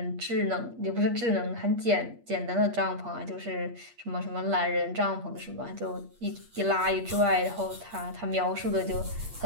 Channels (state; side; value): late; left; 8.5 ms